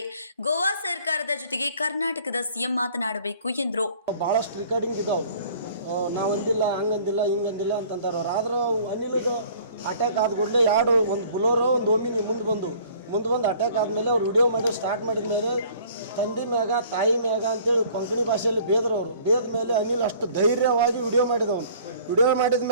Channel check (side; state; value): both; inverted; correlation -0.53